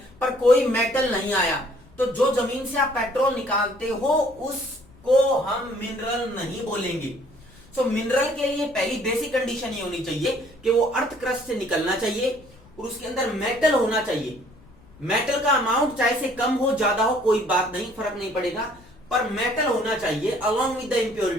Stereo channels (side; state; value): left; noise; rumble, 25 dB below the sound